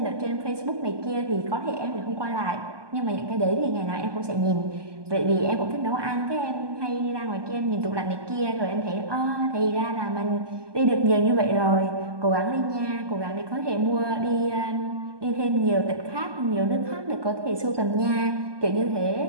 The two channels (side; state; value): left; late; 1.2 ms